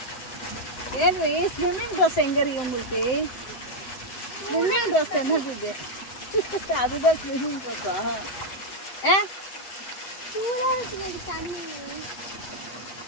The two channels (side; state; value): right; late; 7.8 ms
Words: ஸ்விம்மிங் ட்ரெஸ் எங்கே இருக்கு உங்களுக்கு? ஸ்விம்மிங் ட்ரெஸ் என்னது இது? அதுதான் ஸ்விம்மிங் ட்ரெஸ்ஸா?